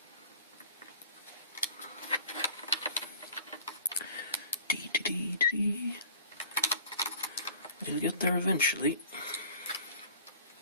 We'll get there eventually.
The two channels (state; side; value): inverted; both; correlation -0.46